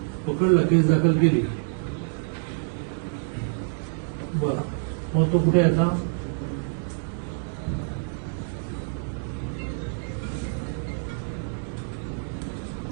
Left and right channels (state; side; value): silent; left; digital silence